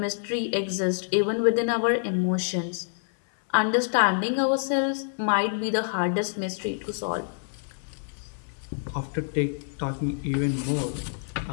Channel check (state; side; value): silent; right; digital silence